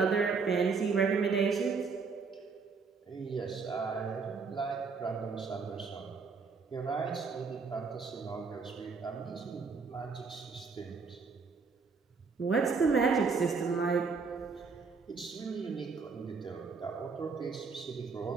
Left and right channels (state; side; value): quieter; left; 4.9 dB